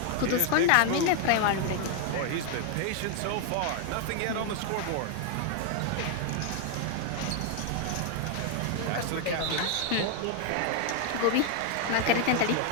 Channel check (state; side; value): different; both; correlation 0.00